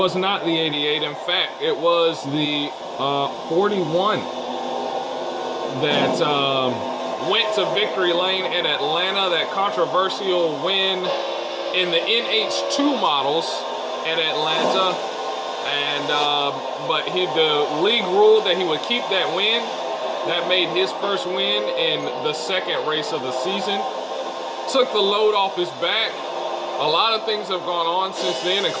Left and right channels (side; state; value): both; identical; correlation 1.00